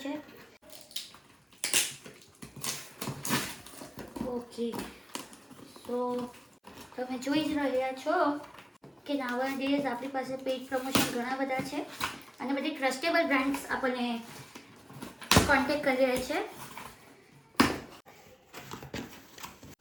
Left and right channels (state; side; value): identical; both; correlation 1.00